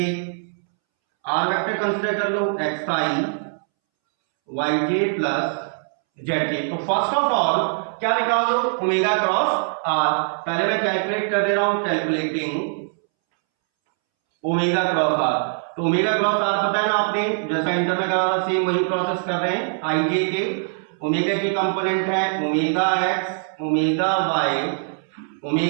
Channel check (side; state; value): left; silent; 64 dB below the other